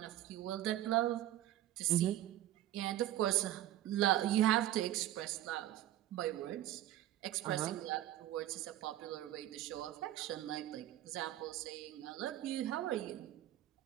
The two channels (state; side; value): quieter; left; 13.6 dB